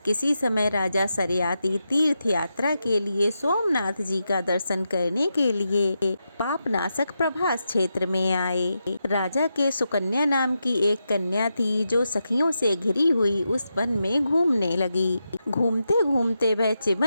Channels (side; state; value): both; inverted; correlation -0.87